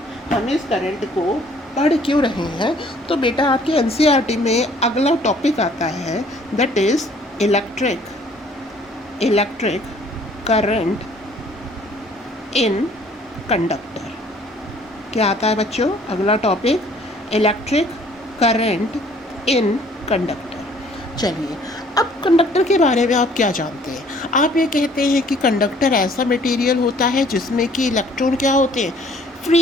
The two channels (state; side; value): normal; both; correlation 0.58